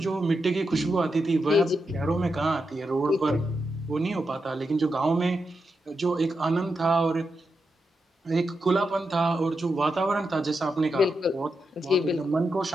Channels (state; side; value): normal; both; correlation 0.86